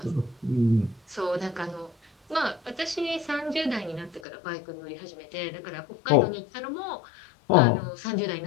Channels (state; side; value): drops out; right; at 4.2 s